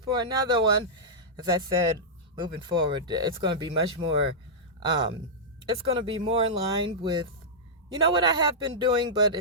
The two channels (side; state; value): both; normal; correlation -0.11